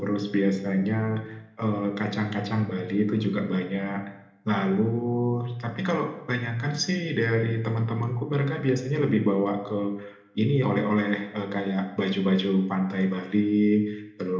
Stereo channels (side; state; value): both; identical; correlation 1.00